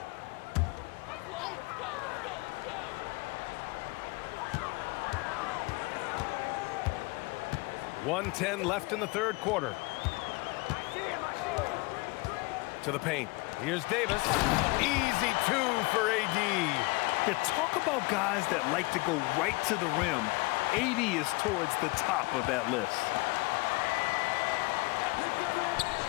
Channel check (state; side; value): quieter; right; 25.6 dB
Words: .110 left in the third quarter. To the paint. Here's Davis. Easy 2 for AD. Yeah, talk about guys that like to go right to the rim. AD is towards the top of that list.